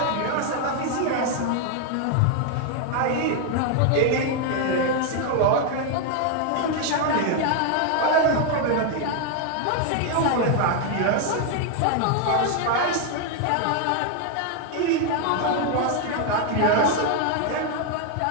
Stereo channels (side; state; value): both; different; correlation 0.01